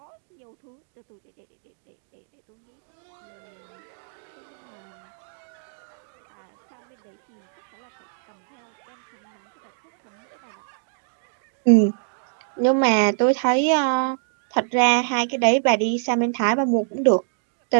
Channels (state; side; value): silent; left; digital silence